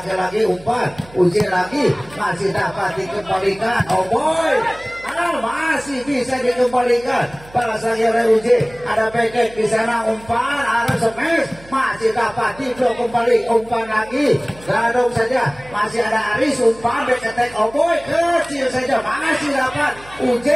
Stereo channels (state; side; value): noise; right; hum, 22 dB below the sound